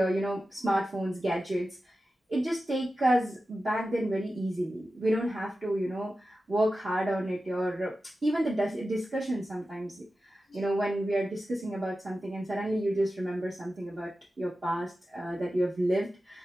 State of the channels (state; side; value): normal; both; correlation 0.93